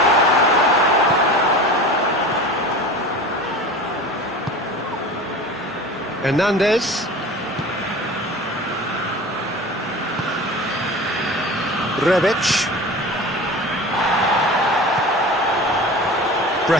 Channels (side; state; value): both; normal; correlation 0.35